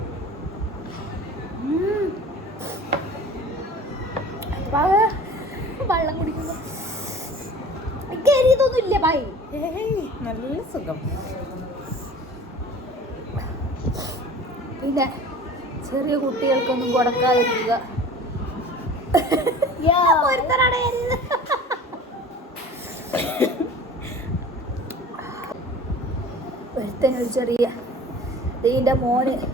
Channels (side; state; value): both; normal; correlation 0.42